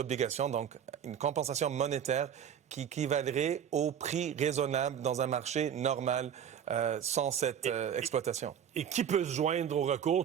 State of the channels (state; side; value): quieter; left; 8.7 dB